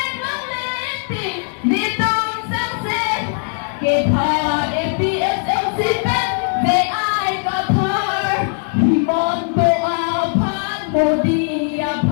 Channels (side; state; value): right; silent; digital silence